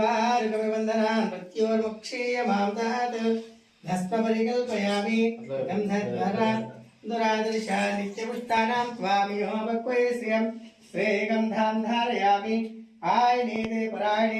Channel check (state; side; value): identical; both; correlation 1.00